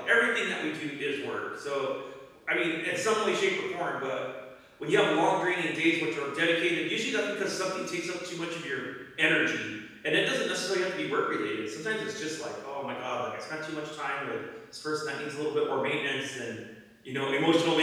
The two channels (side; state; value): both; identical; correlation 1.00